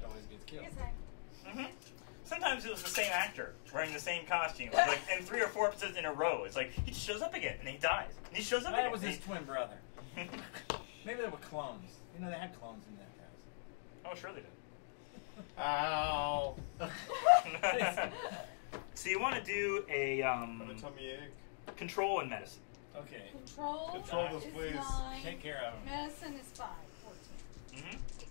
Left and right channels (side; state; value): right; silent; digital silence